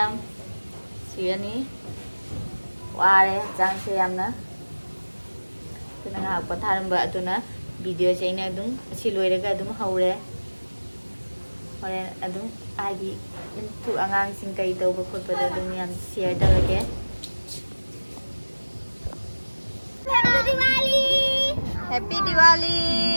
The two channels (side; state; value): both; inverted; correlation -1.00